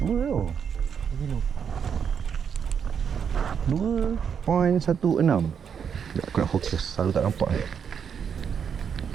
tu. 2.16. Aku nak fokus, selalu tak nampak.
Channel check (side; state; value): left; quieter; 7.3 dB